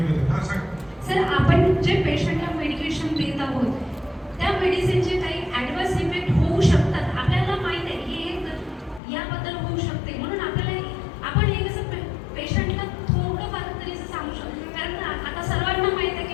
हां सांग. सर, आपण जे पेशंटला मेडिकेशन देत आहोत त्या मेडिसिनचे काही ॲडव्हर्स इफेक्ट होऊ शकतात. आपल्याला माहित आहे की हे याबद्दल होऊ शकते, म्हणून आपण हे कसं पेशंटला थोडंफार तरी असं सांगू शकतो. कारण आता सर्वांना माहित आहे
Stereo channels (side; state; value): right; drops out; at 9.0 s